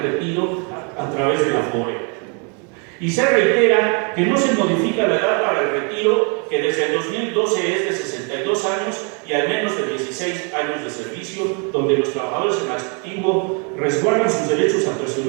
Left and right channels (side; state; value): left; quieter; 36.8 dB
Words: retiro a través de la FORE. Y se reitera que no se modifica la edad para el retiro, que desde el 2012 es de 62 años y al menos de 16 años de servicio, donde los trabajadores en activo resguardan sus derechos a